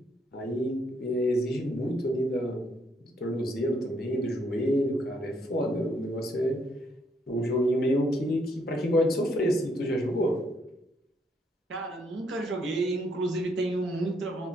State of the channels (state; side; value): normal; both; correlation 0.71